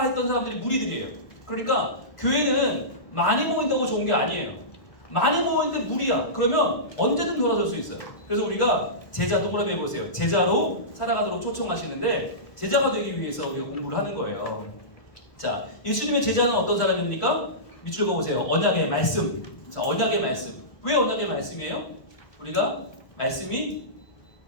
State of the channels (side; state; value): right; late; 1.1 ms